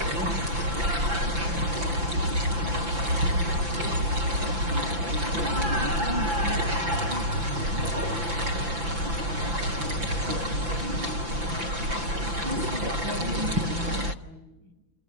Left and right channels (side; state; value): left; late; 5.9 ms